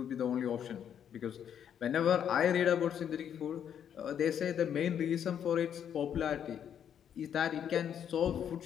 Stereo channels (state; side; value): quieter; right; 8.9 dB